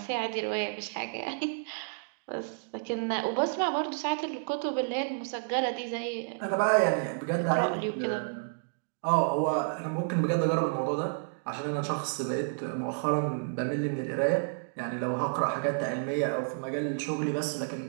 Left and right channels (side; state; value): left; silent; digital silence